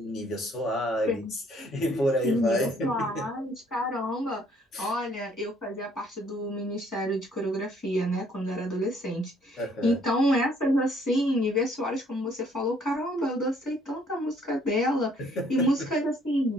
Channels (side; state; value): both; normal; correlation 0.63